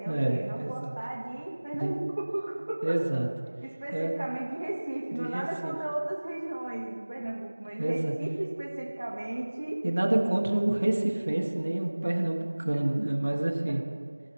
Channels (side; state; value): both; inverted; correlation -1.00